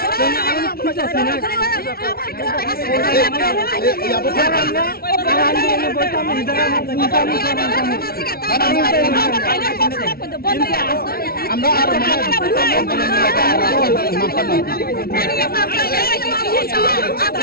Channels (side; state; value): right; late; 0.44 ms